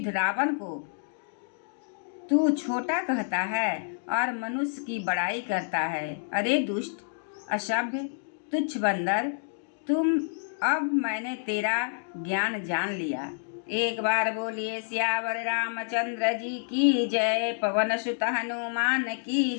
रावण को तू छोटा कहता है और मनुष्य की बड़ाई करता है। अरे दुष्ट, असभ्य, तुच्छ बंदर, अब मैंने तेरा ज्ञान जान लिया। एक बार बोलिए सियावर रामचंद्र जी की जय। पवन सुत हनुमान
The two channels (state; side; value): silent; right; digital silence